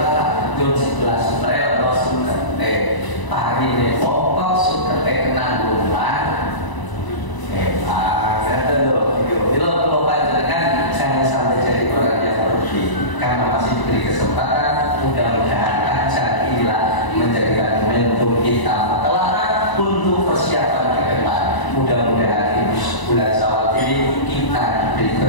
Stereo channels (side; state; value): right; late; 1.0 ms